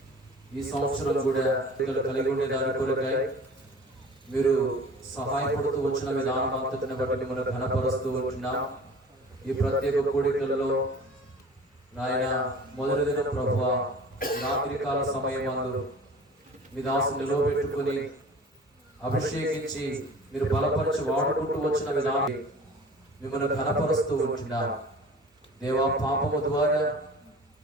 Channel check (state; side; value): normal; both; correlation 0.43